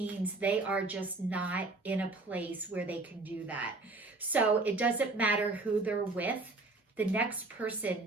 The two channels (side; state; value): left; quieter; 3.3 dB